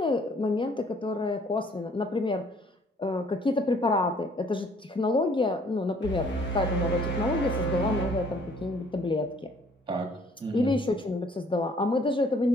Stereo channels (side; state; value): both; normal; correlation 0.59